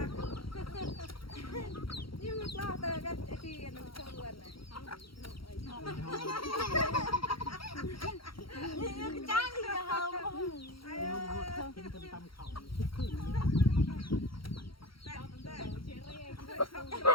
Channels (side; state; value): right; late; 0.74 ms